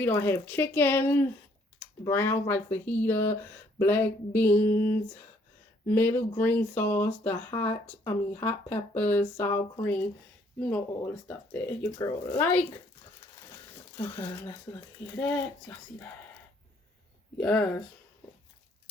I have chicken, brown rice fajita, black beans, middle green sauce, hot peppers, sour cream. You know all the stuff that your girl like. Okay, let's look at that. Y'all see that? Yes.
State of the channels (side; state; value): both; normal; correlation 0.65